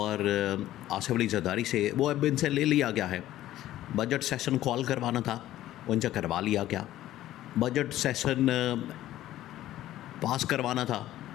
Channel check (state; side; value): quieter; right; 14.0 dB